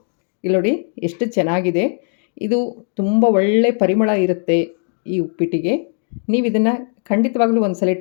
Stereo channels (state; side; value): silent; right; 55 dB below the other